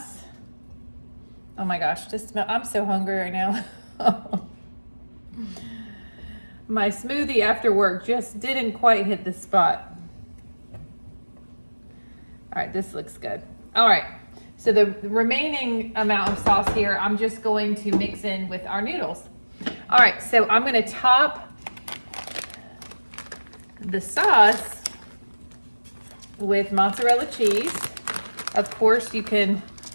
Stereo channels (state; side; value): inverted; both; correlation -1.00